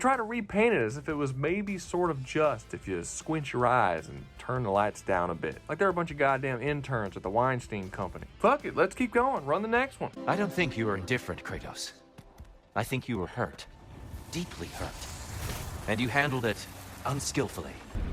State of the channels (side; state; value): both; identical; correlation 1.00